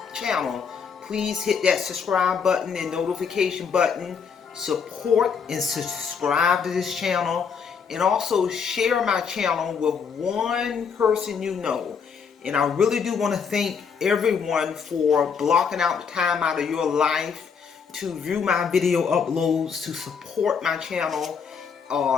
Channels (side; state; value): right; quieter; 6.3 dB